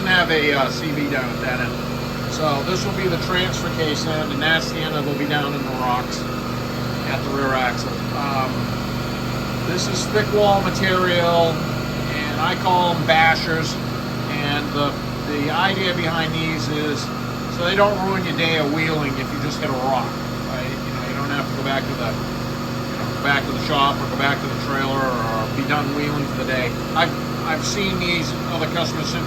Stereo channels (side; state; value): right; noise; hum, 19 dB below the sound